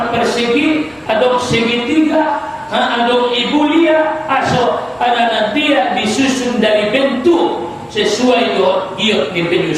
persegi, ada segitiga, ada ibulia, aso ada dia disusun dari bentuk sesuai giot di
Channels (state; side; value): identical; both; correlation 1.00